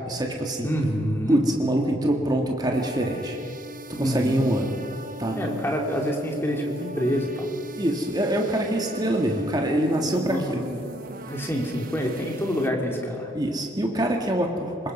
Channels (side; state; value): both; normal; correlation 0.71